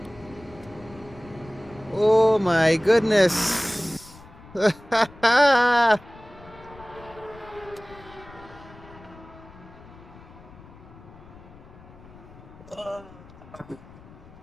Oh my goodness.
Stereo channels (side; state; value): left; noise; rumble, 20 dB below the sound